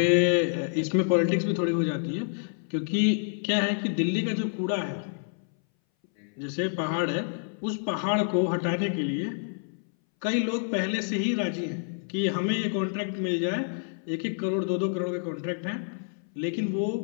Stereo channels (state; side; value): silent; right; 59 dB below the other